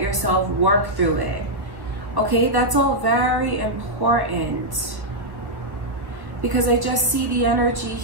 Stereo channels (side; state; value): left; late; 1.3 ms